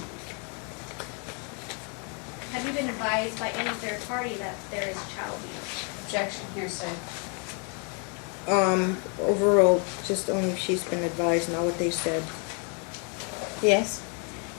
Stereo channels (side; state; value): right; quieter; 37.3 dB